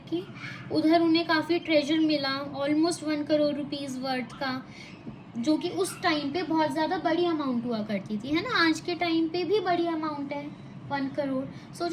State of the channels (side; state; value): both; identical; correlation 1.00